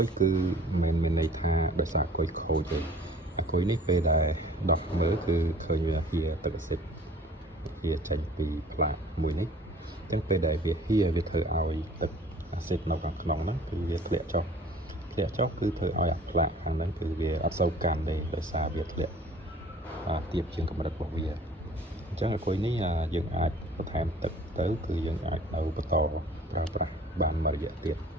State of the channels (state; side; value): normal; both; correlation 0.51